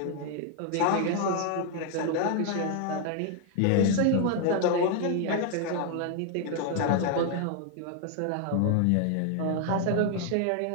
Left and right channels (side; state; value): both; different; correlation 0.00